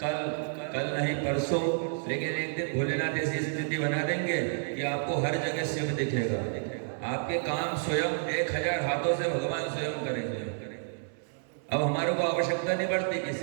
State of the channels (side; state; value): left; silent; 58 dB below the other